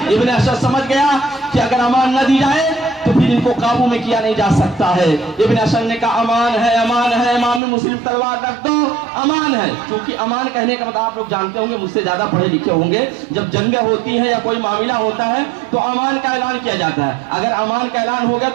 ابن اشعث سمجھ گیا کہ اگر امان نہ دی جائے تو پھر ان کو قابو میں کیا نہیں جا سکتا ہے. ابن اشعث نے کہا امان ہے, امان ہے. امام مسلم تلوار رکھ دو, امان ہے. کیونکہ امان کہنے کا مطلب آپ لوگ جانتے ہوں گے, مجھ سے زیادہ پڑھے لکھے ہوں گے, جب جنگیں ہوتی ہیں یا کوئی معاملہ ہوتا ہے تو امان کا اعلان کیا جاتا ہے. اگر امان کا اعلان ہو گیا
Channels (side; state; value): left; drops out; at 7.6 s